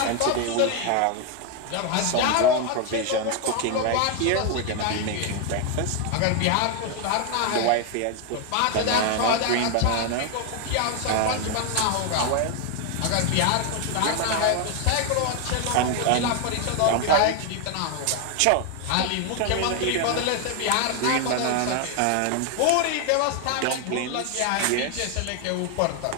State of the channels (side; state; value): both; different; correlation 0.01